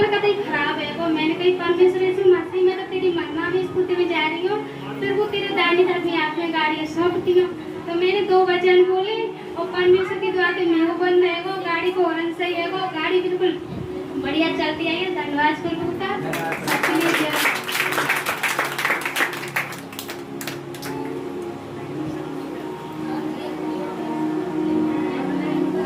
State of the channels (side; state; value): both; identical; correlation 1.00